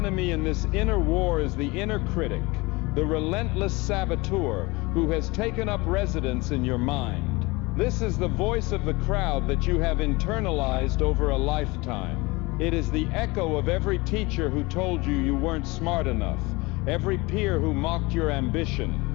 in this inner war is the inner critic, the relentless saboteur who has taken up residence in your mind. This is the voice of the crowd that you have internalized over a lifetime. It is the echo of every teacher who told you you weren't smart enough, every peer who mocked your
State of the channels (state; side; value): quieter; right; 23.9 dB